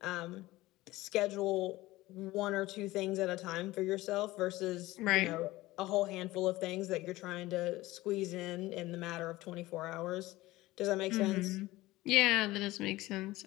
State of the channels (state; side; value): quieter; right; 18.4 dB